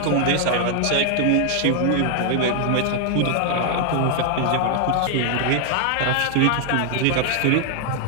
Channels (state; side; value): different; both; correlation 0.00